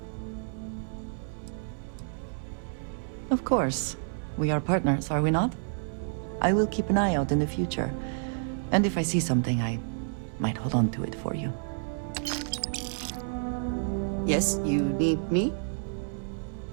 Of course. We are partners, are we not? I will keep an eye out in the future. And if I see something, I might hold on to it for you. Yes, you need me?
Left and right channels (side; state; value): left; silent; digital silence